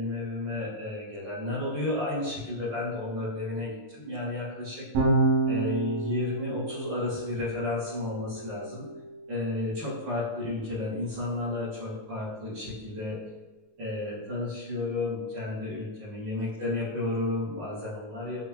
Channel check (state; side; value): late; left; 19 ms